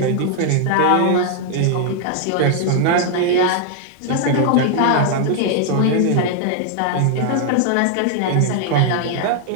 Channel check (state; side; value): different; both; correlation 0.00